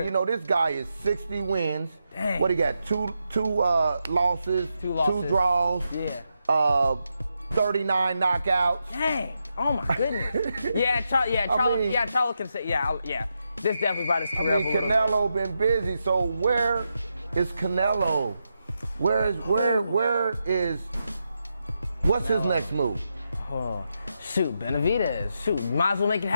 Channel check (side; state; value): both; inverted; correlation -0.85